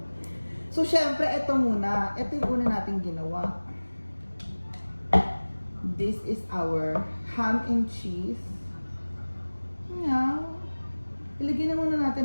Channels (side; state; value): both; inverted; correlation -1.00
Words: So, syempre, ito muna. Ito yung una natin ginawa. This is our ham and cheese. Yeah. Ilagay na muna